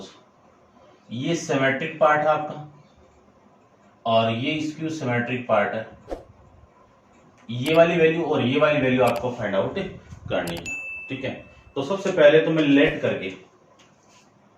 ये सिमेट्रिक पार्ट है आपका और ये स्क्यू सिमेट्रिक पार्ट है। ये वाली वैल्यू और ये वाली वैल्यू आपको फाइंड आउट करनी है। ठीक है, तो सबसे पहले तो मैं लेट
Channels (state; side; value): identical; both; correlation 1.00